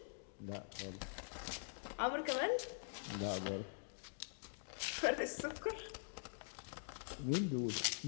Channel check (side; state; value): right; silent; digital silence